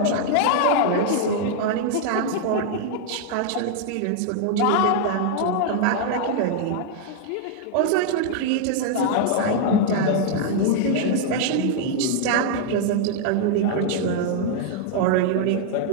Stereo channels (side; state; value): both; different; correlation 0.00